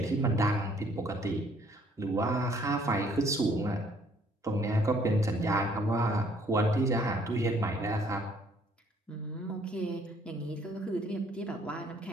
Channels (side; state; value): both; normal; correlation 0.63